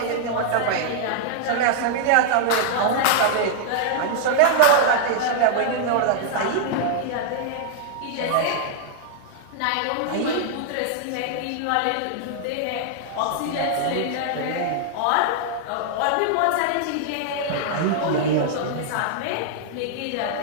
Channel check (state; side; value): different; both; correlation -0.01